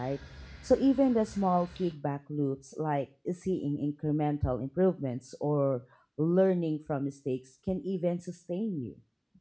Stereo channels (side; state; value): both; identical; correlation 1.00